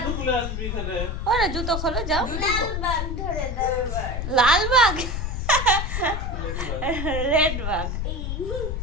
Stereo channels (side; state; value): left; noise; rumble, 3 dB below the sound